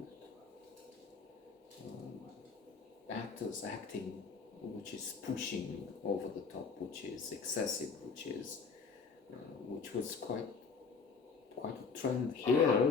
actors acting which is pushing over the top, which is excessive, which was quite a trend here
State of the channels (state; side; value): quieter; right; 5.2 dB